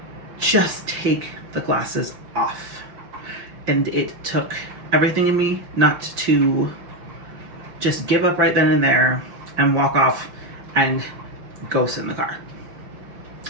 just take the glasses off. And it took everything in me not to just give up right then and there and walk off and go sit in the car.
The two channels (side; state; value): left; late; 5.8 ms